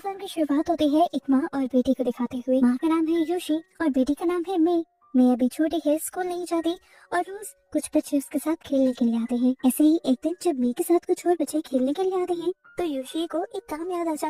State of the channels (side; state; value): both; identical; correlation 1.00